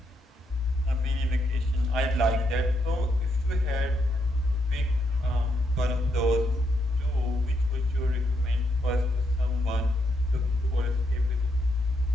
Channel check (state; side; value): normal; both; correlation 0.78